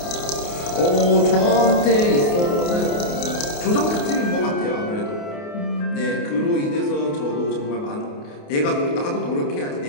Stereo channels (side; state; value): right; late; 28 ms